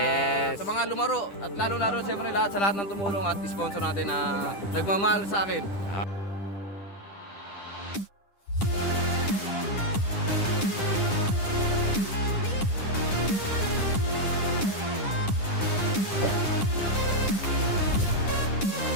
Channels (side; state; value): right; late; 10 ms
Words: sa mga lumaro. At lalo-lalo, siyempre, sa lahat ng tumulong at sponsor natin na nagmamahal sa akin.